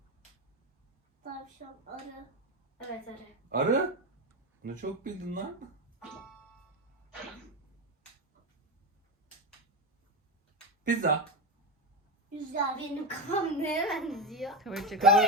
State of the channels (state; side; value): normal; both; correlation 0.15